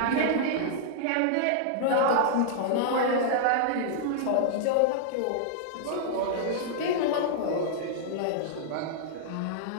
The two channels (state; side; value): different; both; correlation -0.01